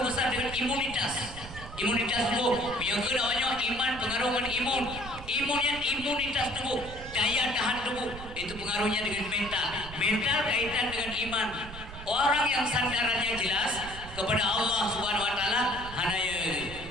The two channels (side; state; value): right; noise; rumble, 13 dB below the sound